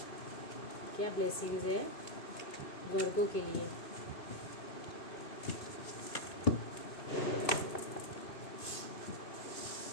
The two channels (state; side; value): late; right; 2.6 ms